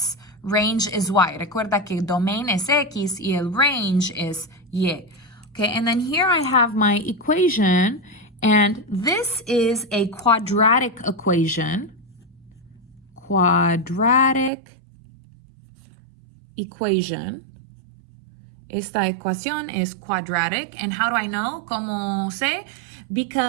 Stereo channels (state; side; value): drops out; left; at 14.5 s